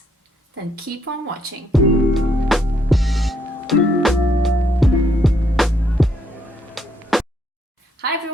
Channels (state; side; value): normal; both; correlation 0.72